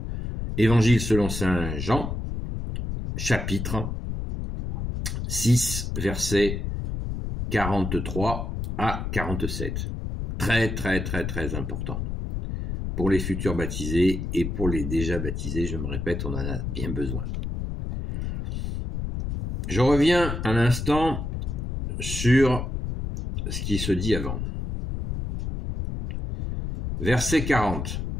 Évangile selon saint Jean, chapitre 6, versets 43 à 47. Très, très, très, très important. Pour les futurs baptisés et pour les déjà baptisés, je me répète, on en a bien besoin. Je reviens un instant sur ce qui se dit avant. Verset 40.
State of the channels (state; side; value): noise; left; rumble, 4 dB below the sound